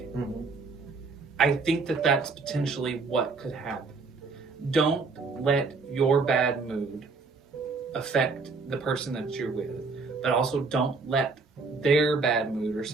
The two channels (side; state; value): left; quieter; 4.2 dB